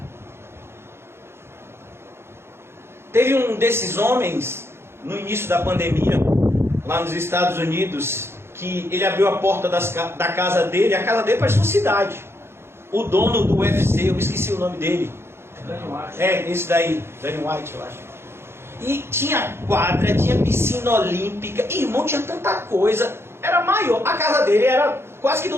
Teve um desses homens, no início da pandemia, lá nos Estados Unidos, que ele abriu a porta da casa dele. A casa dele parecia uma cidade. O dono do UFC, eu esqueci o nome dele. Esse daí, Danny White, eu acho. E tinha quadra, tinha piscina olímpica. Irmão, tinha tanta coisa. Era maior. A casa dele era quase que do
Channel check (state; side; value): late; left; 0.12 ms